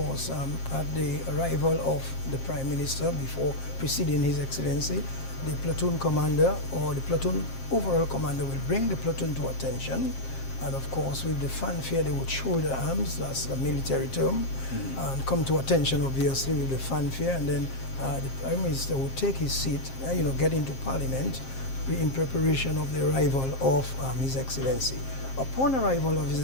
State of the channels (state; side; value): late; right; 7.5 ms